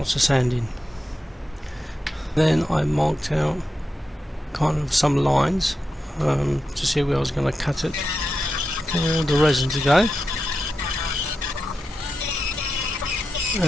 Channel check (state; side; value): normal; both; correlation 0.88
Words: of sanding. Then I marked out kind of some lines to see where I was going to cut it for the resin to go.